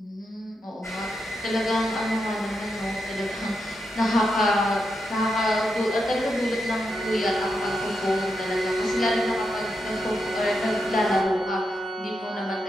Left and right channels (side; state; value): both; normal; correlation 0.85